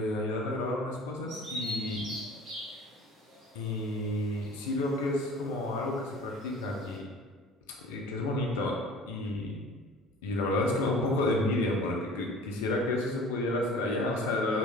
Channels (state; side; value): normal; both; correlation 0.44